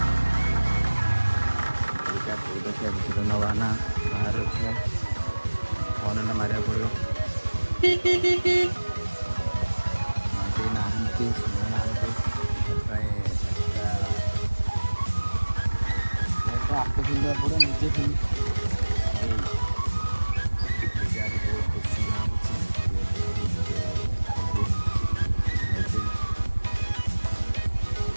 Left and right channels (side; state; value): both; inverted; correlation -1.00